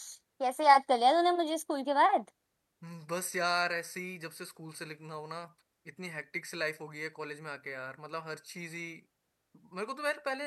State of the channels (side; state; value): both; identical; correlation 1.00